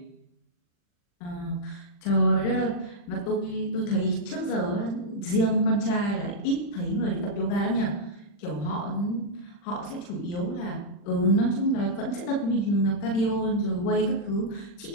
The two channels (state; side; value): late; right; 40 ms